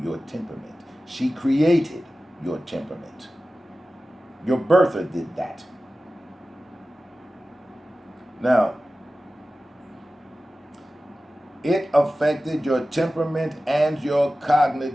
your temperament. She created your temperament. Your birther did that. Now, it affected your temperament and your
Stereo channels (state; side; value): normal; both; correlation 0.95